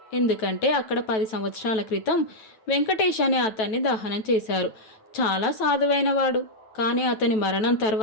ఎందుకంటే అక్కడ 10 సంవత్సరాల క్రితం వెంకటేష్ అనే అతన్ని దహనం చేశారు. చాలా సాధువైనవాడు. కానీ అతని మరణం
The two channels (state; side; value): late; right; 9.1 ms